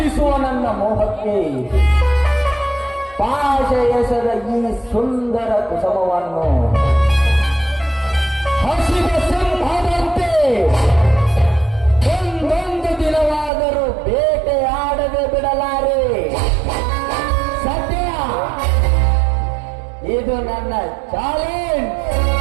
ನನ್ನ ಮೋಹಕ್ಕೆ ಪಾಶ ಎಸೆದ ಈ ಸುಂದರ ಕುಸುಮವನ್ನು ಹಸಿದ ಸಿಂಹದಂತೆ ಒಂದೊಂದು ದಿನವಾದರೂ ಬೇಟೆಯಾಡದೆ ಬಿಡಲಾರೆ ಸತ್ಯ ಇದು ನನ್ನ ಚಾಲೆಂಜ್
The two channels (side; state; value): left; drops out; at 13.5 s